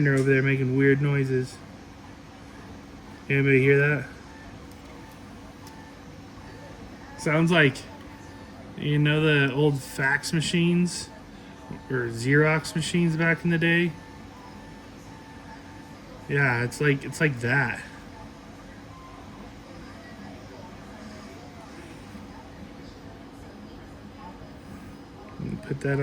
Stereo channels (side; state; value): both; identical; correlation 1.00